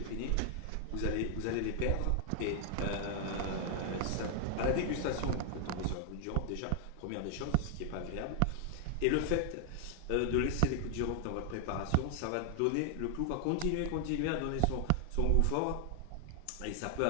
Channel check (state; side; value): different; both; correlation 0.00